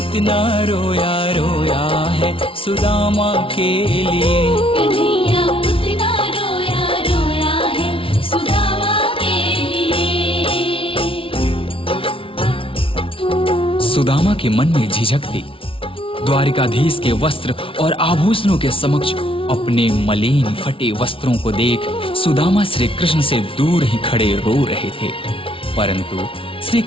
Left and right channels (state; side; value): late; right; 0.26 ms